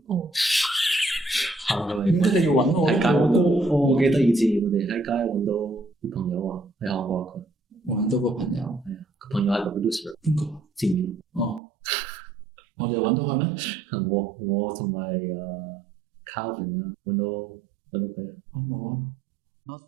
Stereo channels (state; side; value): drops out; left; at 11.6 s